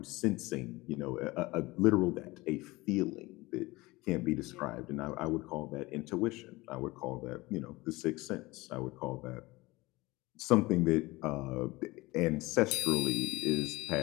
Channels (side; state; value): right; quieter; 21.3 dB